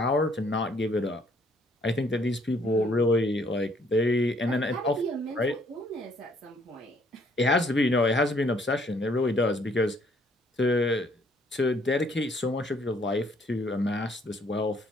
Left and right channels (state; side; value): normal; both; correlation 0.65